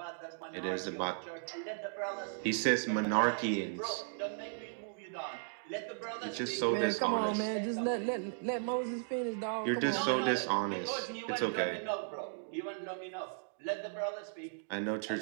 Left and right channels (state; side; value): silent; left; digital silence